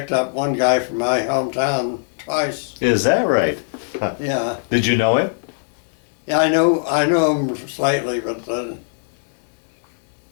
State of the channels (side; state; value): right; silent; 65 dB below the other